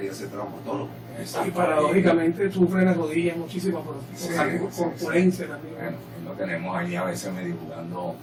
ser traumatólogo. Y paradójicamente sufre las rodillas muchísimo por Sí, corpulencia también. Bueno, lo tenemos ahí a veces medio jugando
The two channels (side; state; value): both; identical; correlation 1.00